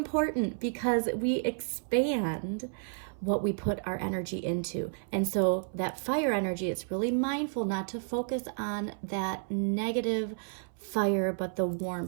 because we expand what we put our energy into. And so that fire energy, it's really mindful not to focus on that negative fire, but the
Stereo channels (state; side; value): silent; left; 57 dB below the other